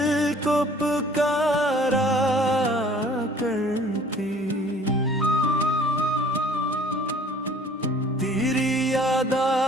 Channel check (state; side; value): normal; both; correlation 0.53